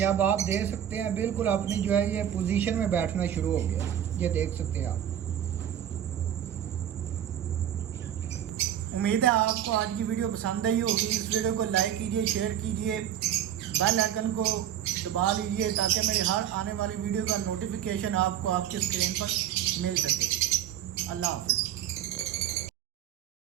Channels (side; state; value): left; quieter; 10.4 dB